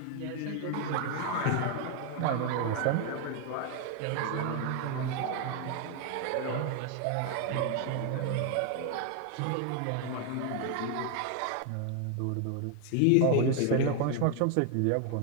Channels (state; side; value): different; both; correlation 0.01